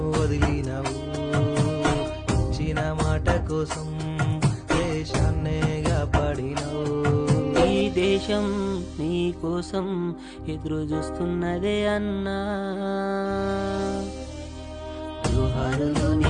వదిలినావు. ఇచ్చిన మాట కోసం దేశాన్నే కాపాడినవు. ఈ దేశం నీ కోసం ఎదురు చూస్తున్నదే అన్నా. జోహారులు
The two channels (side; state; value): both; identical; correlation 1.00